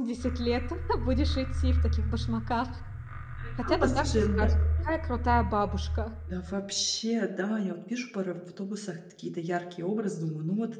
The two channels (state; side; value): identical; both; correlation 1.00